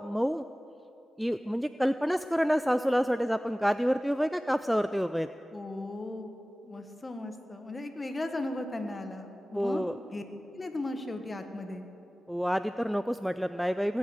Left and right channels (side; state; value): both; normal; correlation 0.98